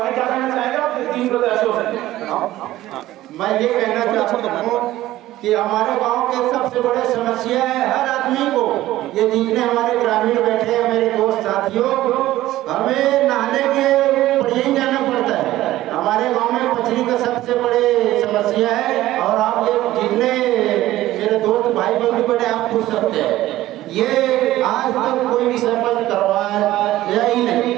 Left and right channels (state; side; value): quieter; left; 15.4 dB